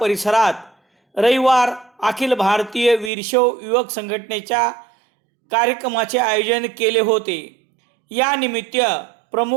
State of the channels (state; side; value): drops out; left; at 3.1 s